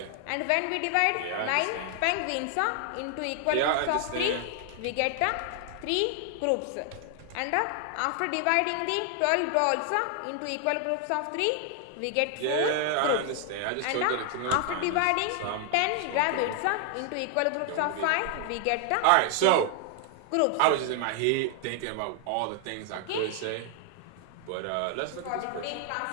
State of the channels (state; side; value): different; both; correlation 0.00